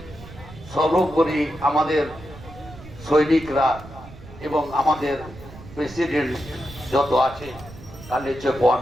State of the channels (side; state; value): right; noise; rumble, 17 dB below the sound